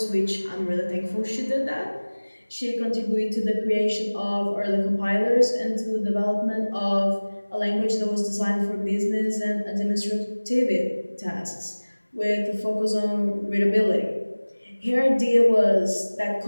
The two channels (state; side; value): inverted; both; correlation -1.00